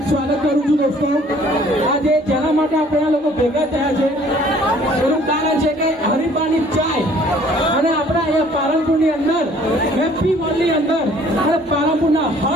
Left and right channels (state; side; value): normal; both; correlation 0.56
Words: સ્વાગત કરું છું દોસ્તો। આજે જેના માટે આપણે આ લોકો ભેગા થયા છે એનું કારણ છે કે હરિપાની ચાય અને આપણા અહીંયા પાલનપુરની અંદર હેપી મોલની અંદર અને પાલનપુરના